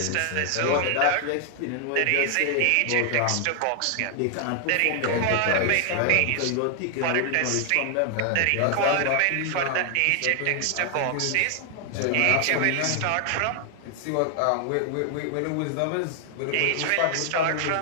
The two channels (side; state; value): both; different; correlation 0.00